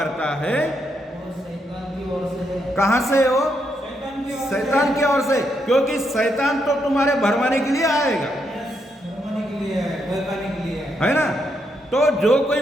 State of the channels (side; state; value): both; normal; correlation 0.79